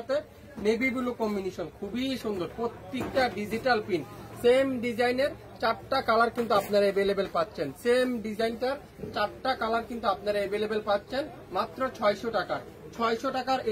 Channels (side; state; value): both; identical; correlation 1.00